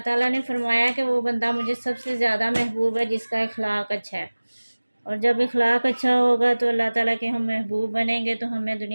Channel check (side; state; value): both; inverted; correlation -1.00